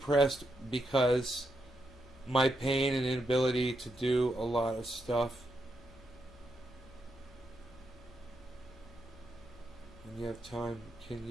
because my pain and inability to do a lot of stuff. When you have time, can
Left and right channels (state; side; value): normal; both; correlation 0.82